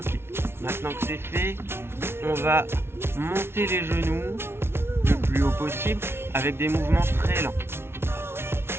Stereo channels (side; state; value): left; late; 0.12 ms